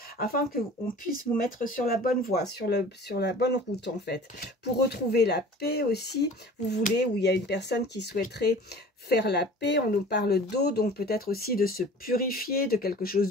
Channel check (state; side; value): normal; both; correlation 0.44